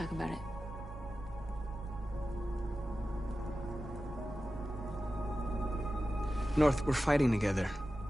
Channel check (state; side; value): noise; right; hum, 23 dB below the sound